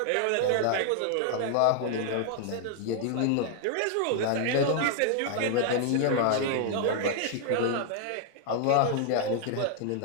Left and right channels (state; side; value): different; both; correlation 0.00